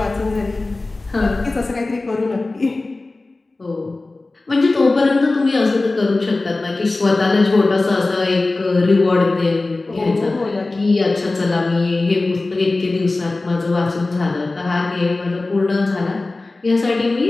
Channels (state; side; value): quieter; right; 3.2 dB